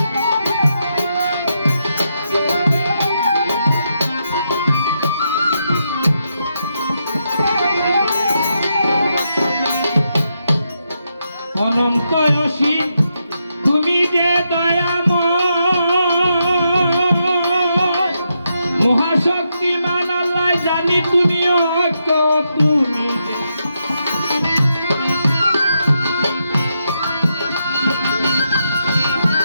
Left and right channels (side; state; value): both; inverted; correlation -0.82